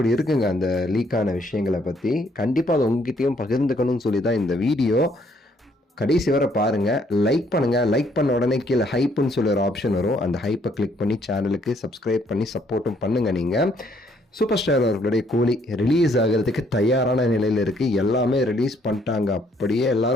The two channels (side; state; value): both; normal; correlation 0.67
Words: இருக்குங்க அந்த லீக்கான விஷயங்களை பற்றி. கண்டிப்பாக அதை உங்ககிட்டயும் பகிர்ந்துக்கணும்னு சொல்லி தான் இந்த வீடியோ. கடைசி வரை பாருங்கள், லைக் பண்ணுங்கள். லைக் பண்ண உடனே கீழே ஹைப்புன்னு சொல்லி ஒரு ஆப்ஷன் வரும். அந்த ஹைப்பை கிளிக் பண்ணி சேனலுக்கு சப்ஸ்கிரைப் பண்ணி சப்போர்ட்டும் பண்ணுங்கள். நீங்கள் சூப்பர் ஸ்டார் அவர்களுடைய கூலி ரிலீஸ் ஆகிறதுக்கு தயாரான நிலையில் இருக்குது. எல்லாமே ரிலீஸ் பண்ணிட்டாங்க. அப்படியே